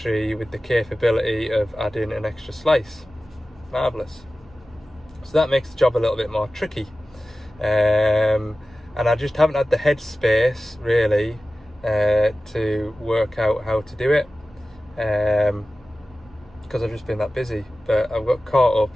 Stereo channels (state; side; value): normal; both; correlation 0.95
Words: with the capability of adding an extra slice. Marvellous. So that makes the job a little bit more tricky, and I just haven't had the headspace really to work out how to do it, because I've just been that busy. But I've got caught up.